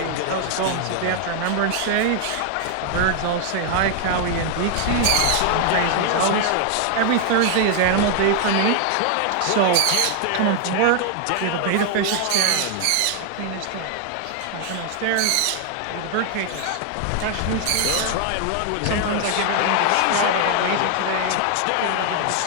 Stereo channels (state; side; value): different; both; correlation 0.00